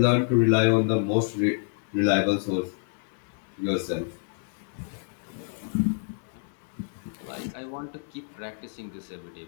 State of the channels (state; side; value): silent; right; digital silence